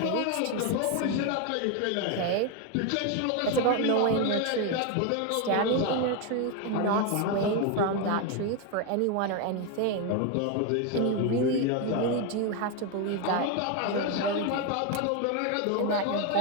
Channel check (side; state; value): both; different; correlation 0.02